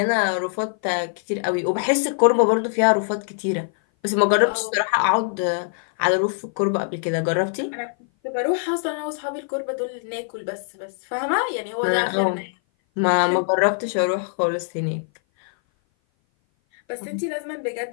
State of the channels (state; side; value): silent; right; 57 dB below the other